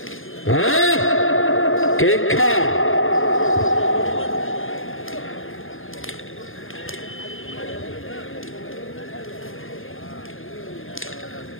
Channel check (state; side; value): late; right; 0.59 ms